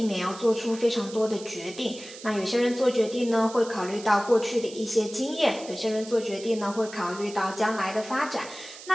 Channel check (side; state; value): right; noise; hiss, 15 dB below the sound